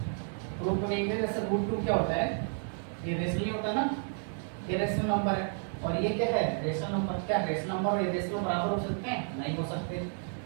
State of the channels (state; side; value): silent; left; 57 dB below the other